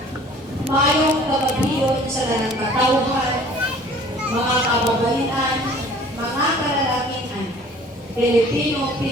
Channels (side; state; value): both; normal; correlation 0.50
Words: Mayong kababiyon sa lanang katauhan, mga kababaihan, mga kalalakihan, Pilipino,